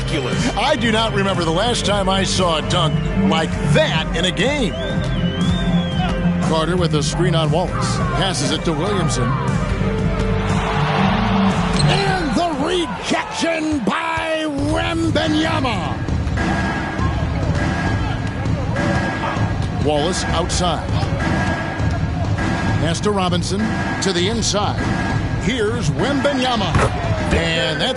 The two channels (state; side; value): identical; both; correlation 1.00